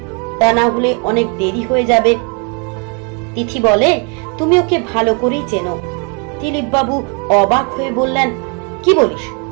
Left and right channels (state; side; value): quieter; left; 34.9 dB